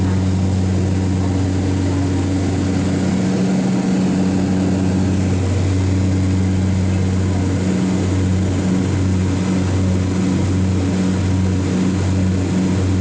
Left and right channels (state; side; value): identical; both; correlation 1.00